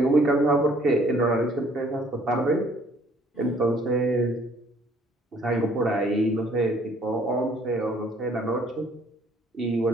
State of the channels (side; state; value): both; normal; correlation 0.60